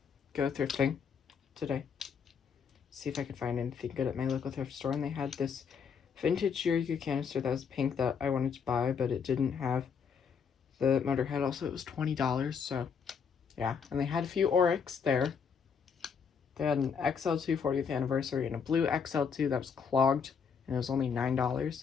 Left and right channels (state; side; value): quieter; right; 6.4 dB